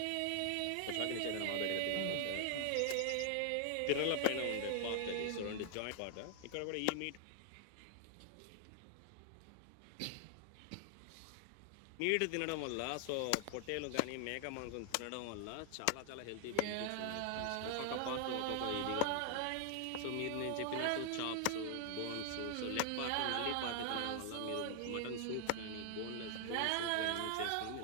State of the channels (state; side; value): different; both; correlation 0.00